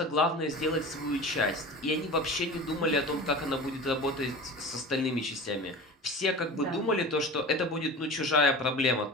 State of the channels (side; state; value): both; normal; correlation 0.34